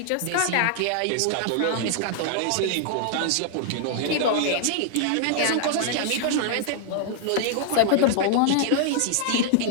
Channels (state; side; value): different; both; correlation -0.01